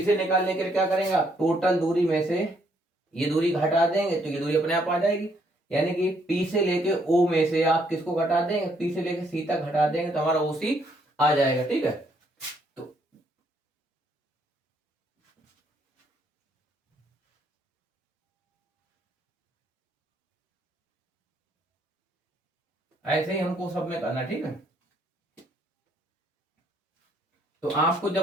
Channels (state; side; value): normal; both; correlation 0.70